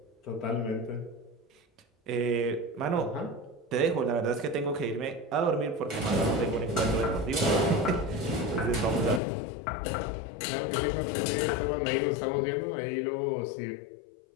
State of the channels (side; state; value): right; drops out; at 9.2 s